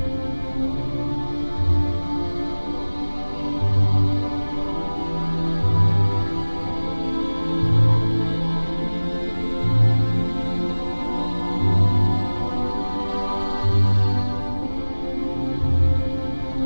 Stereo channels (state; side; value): inverted; both; correlation -1.00